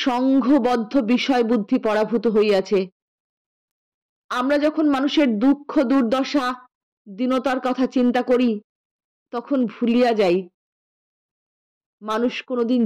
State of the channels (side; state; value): both; identical; correlation 1.00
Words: সংঘবদ্ধ বিষয় বুদ্ধি পরাভূত হইয়াছে। আমরা যখন মানুষের দুঃখ দুর্দশা দীনতার কথা চিন্তা করি তখন ভুলিয়া যাই মানুষ কোনোদিন